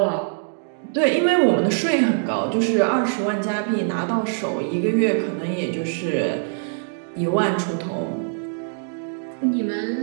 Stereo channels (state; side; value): silent; left; digital silence